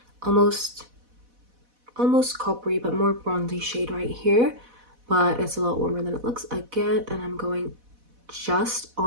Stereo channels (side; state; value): left; late; 4.1 ms